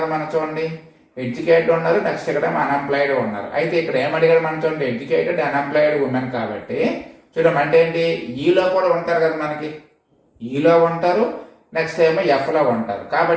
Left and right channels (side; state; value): both; identical; correlation 1.00